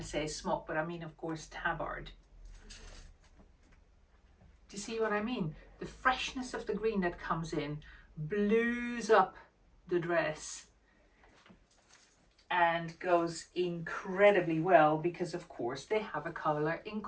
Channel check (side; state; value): both; identical; correlation 1.00